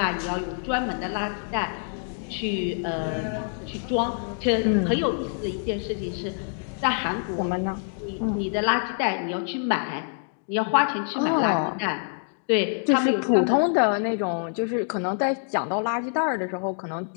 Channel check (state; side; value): silent; right; 61 dB below the other